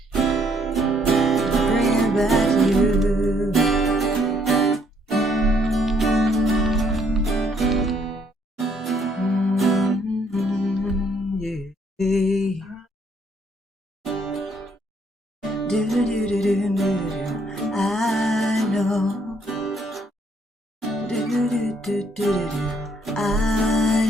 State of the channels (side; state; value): both; normal; correlation 0.68